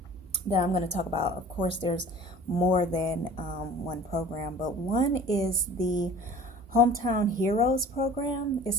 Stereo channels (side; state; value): both; normal; correlation 0.45